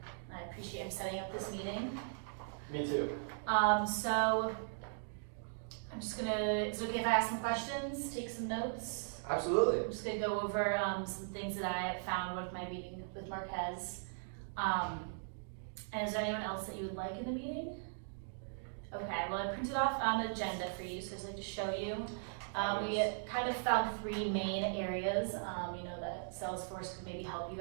I appreciate him setting up this meeting. Me too. So I'm just gonna, is it okay if I ask some questions, take some notes? Absolutely. I'm just gonna go over some things that I found with my meeting with Marquez. And is there anyone else that you would like in the meeting? Okay, well I printed off an agenda for you, so I'd like to show you. We kind of found three main areas, that Salesforce could maybe help you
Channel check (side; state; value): left; silent; digital silence